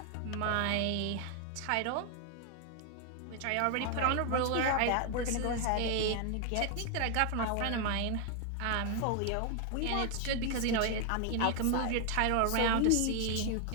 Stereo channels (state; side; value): different; both; correlation 0.00